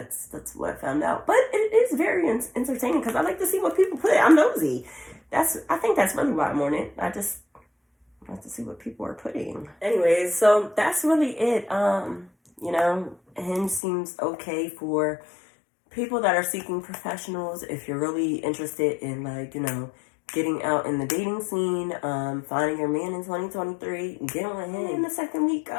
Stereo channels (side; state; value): right; drops out; at 13.8 s